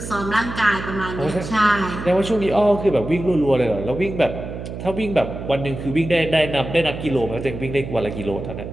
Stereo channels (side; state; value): right; noise; hum, 9 dB below the sound